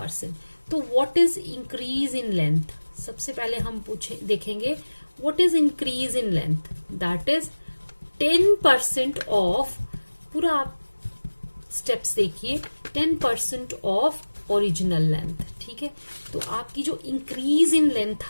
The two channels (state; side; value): inverted; both; correlation -1.00